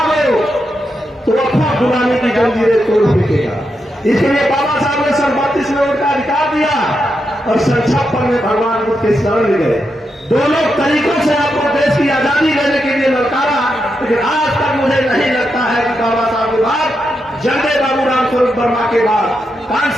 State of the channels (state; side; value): normal; both; correlation 0.85